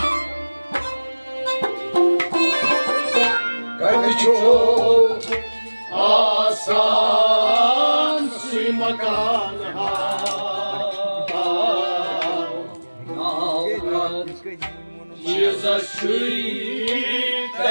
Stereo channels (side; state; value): both; inverted; correlation -1.00